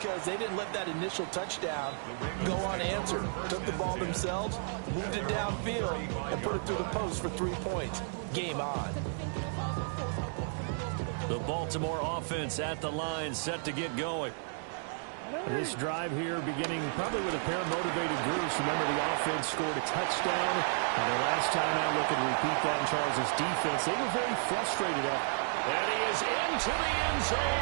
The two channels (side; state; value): left; silent; digital silence